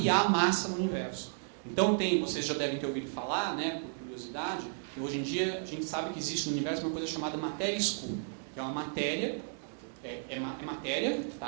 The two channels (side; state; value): left; silent; digital silence